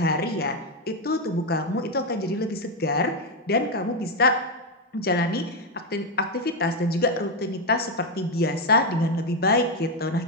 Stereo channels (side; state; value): both; normal; correlation 0.05